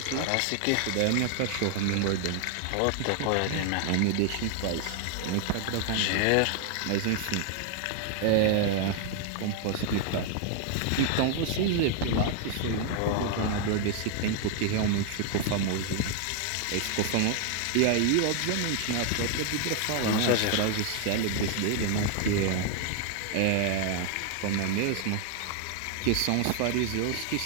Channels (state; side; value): different; both; correlation 0.00